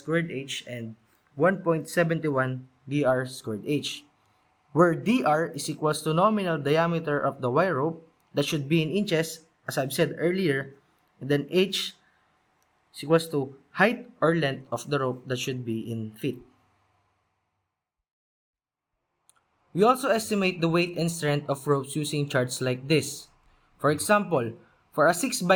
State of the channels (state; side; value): identical; both; correlation 1.00